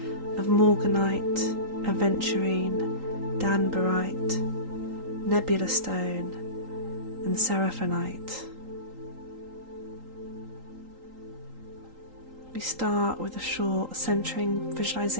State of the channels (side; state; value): left; late; 3.8 ms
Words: of morganite, aventurine, danbarite, nebula stone, and seraphonite. We start with a short centering